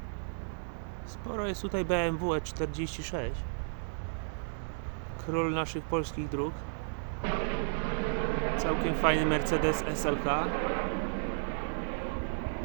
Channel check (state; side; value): silent; left; digital silence